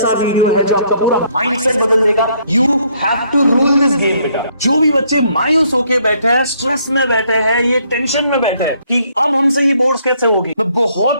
वीडियो है जो आपका पूरा माइंडसेट बदल देगा। You have to rule this game बेटा। जो भी बच्चे मायूस होके बैठे हैं, स्ट्रेस में बैठे हैं, ये टेंशन में बैठे हैं कि अब हमसे ये बोर्ड्स कैसे होगी, मैं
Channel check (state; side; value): inverted; both; correlation -0.68